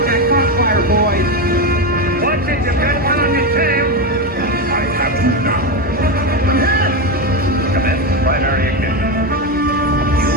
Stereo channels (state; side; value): normal; both; correlation 0.13